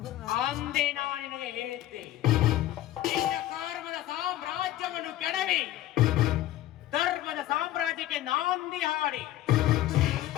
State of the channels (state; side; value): quieter; right; 13.9 dB